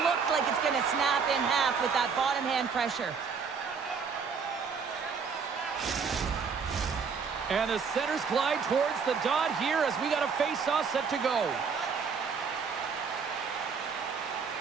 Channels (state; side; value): quieter; left; 5.8 dB